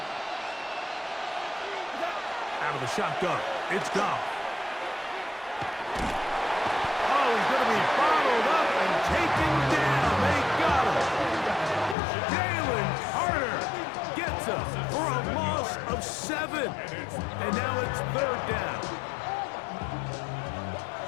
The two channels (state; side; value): drops out; right; at 12.0 s